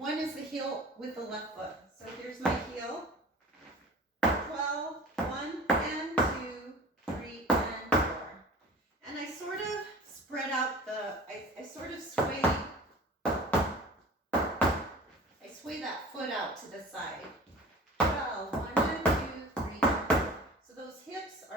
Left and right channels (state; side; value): normal; both; correlation 0.41